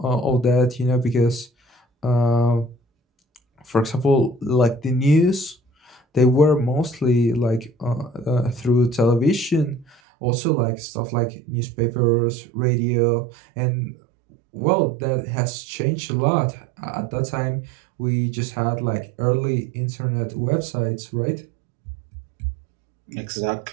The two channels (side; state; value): left; drops out; at 10.0 s